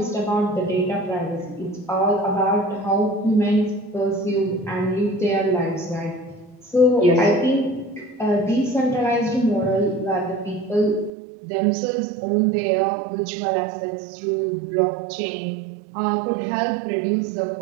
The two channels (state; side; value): drops out; left; at 11.1 s